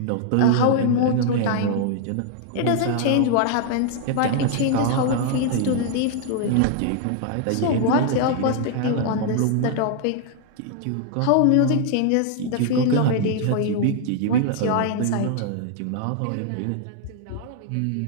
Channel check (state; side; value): different; both; correlation 0.00